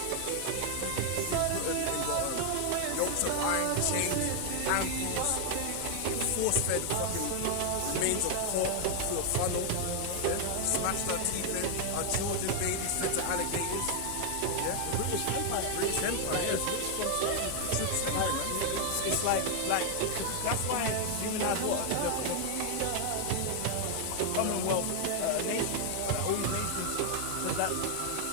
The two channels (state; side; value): different; both; correlation 0.00